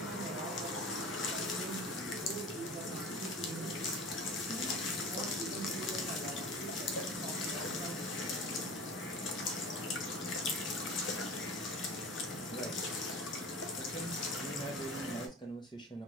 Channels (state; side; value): normal; both; correlation 0.37